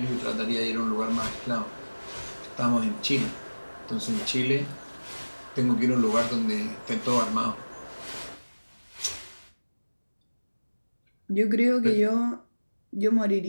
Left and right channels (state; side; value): inverted; both; correlation -1.00